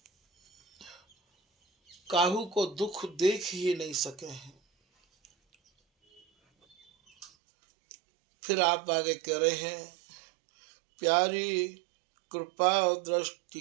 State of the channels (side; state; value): left; drops out; at 7.3 s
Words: काहू को दुख देख ही नहीं सके हैं। फिर आप आगे कह रहे हैं, प्यारी कृपा दृष्टि